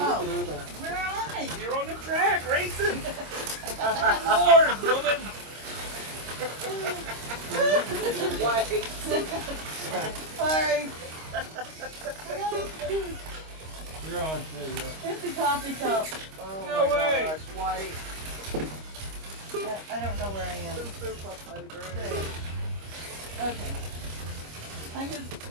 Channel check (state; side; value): late; left; 25 ms